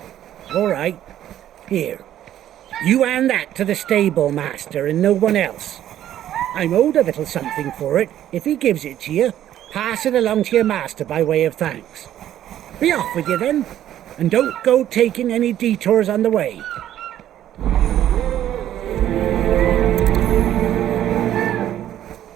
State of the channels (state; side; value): quieter; left; 11.8 dB